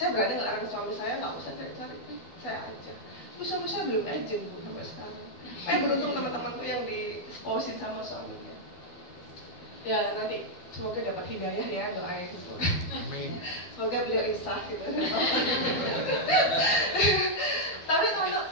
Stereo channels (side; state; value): right; late; 12 ms